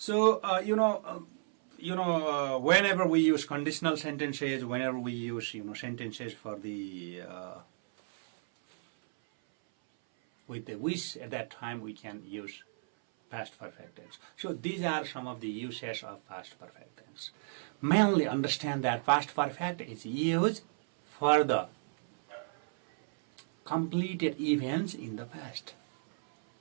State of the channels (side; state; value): left; silent; 56 dB below the other